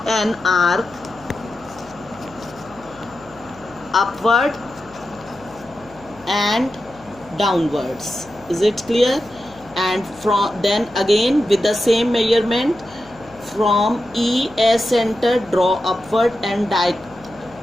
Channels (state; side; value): noise; left; hum, 24 dB below the sound